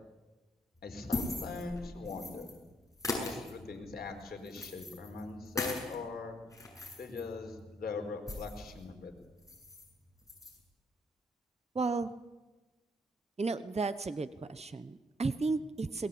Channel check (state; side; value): normal; both; correlation 0.71